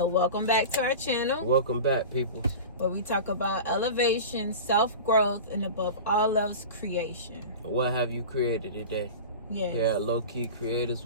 welcome back to our channel. Welcome back, people. Where we talk about elevation, self-growth, and above all else, creation. What have you created today? Yes. Here at Low Key Creators,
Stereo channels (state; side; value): inverted; both; correlation -0.32